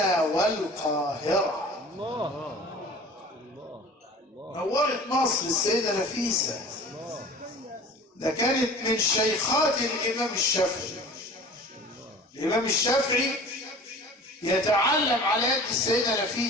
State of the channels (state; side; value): normal; both; correlation 0.42